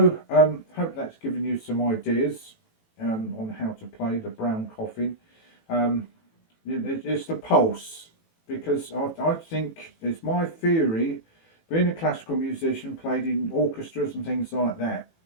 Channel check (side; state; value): right; late; 18 ms